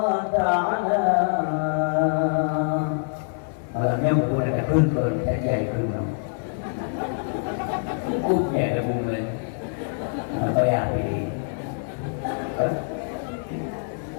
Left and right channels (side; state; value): right; silent; digital silence